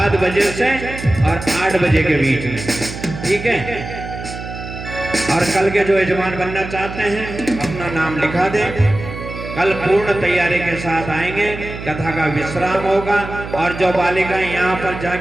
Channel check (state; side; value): noise; right; hum, 10 dB below the sound